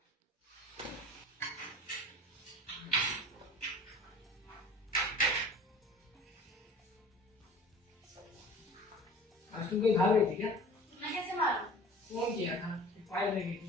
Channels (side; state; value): both; normal; correlation 0.43